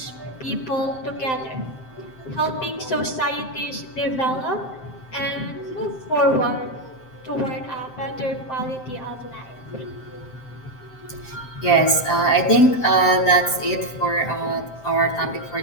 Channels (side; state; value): right; late; 7.7 ms